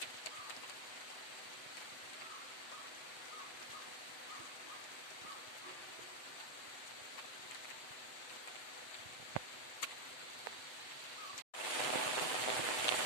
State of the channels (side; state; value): right; late; 7.9 ms